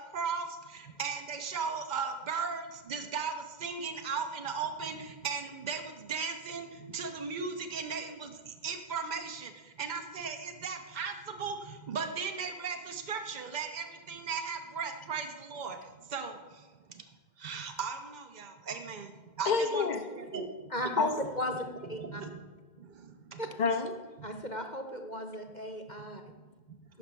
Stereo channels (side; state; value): right; late; 2.1 ms